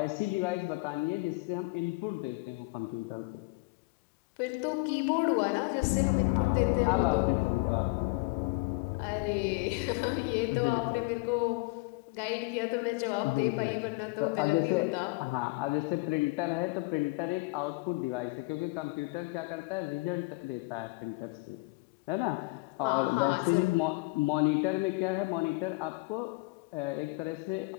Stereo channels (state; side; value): quieter; right; 25.5 dB